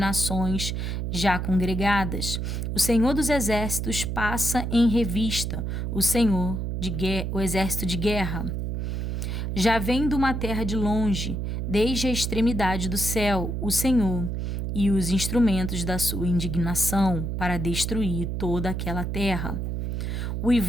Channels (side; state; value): right; noise; hum, 2 dB below the sound